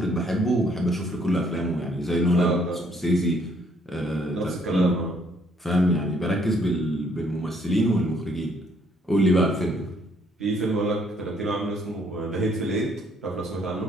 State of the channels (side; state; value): both; normal; correlation 0.66